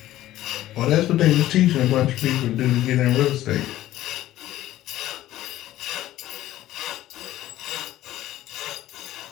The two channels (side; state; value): right; quieter; 14.4 dB